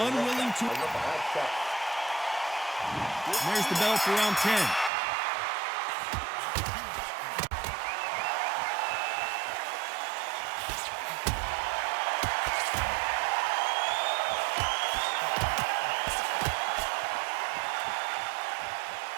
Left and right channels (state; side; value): drops out; left; at 4.9 s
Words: to... There's the bell for round 10.